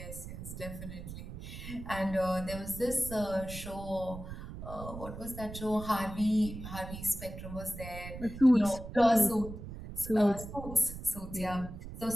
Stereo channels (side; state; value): right; noise; rumble, 10 dB below the sound